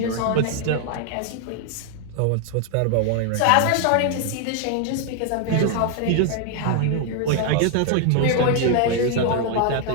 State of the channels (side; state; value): both; different; correlation 0.00